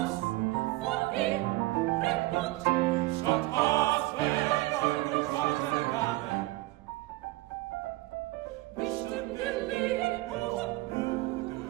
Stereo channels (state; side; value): quieter; left; 19.3 dB